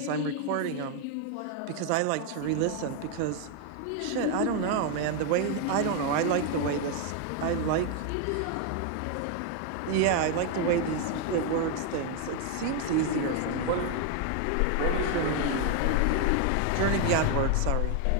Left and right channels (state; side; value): different; both; correlation 0.01